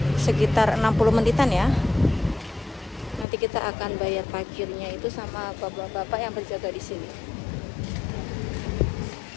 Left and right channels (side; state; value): right; drops out; at 3.2 s